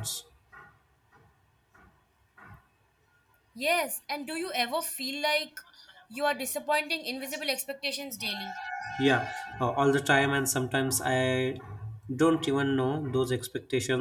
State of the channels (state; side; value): identical; both; correlation 1.00